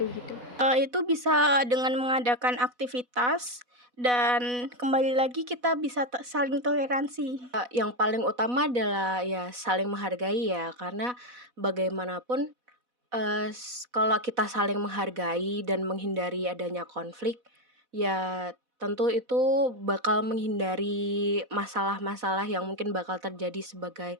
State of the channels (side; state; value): left; late; 4.1 ms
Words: gitu. Itu bisa dengan mengadakan aktivitas dan kembali lagi kita bisa saling toleransi. Yang paling utama adalah ya saling menghargai ya, karena bagaimanapun kalau kita saling menghargai dan menghindari adanya konflik, ya tentu itu bakal menghindari masalah-masalah yang mungkin bakal terjadi sebagai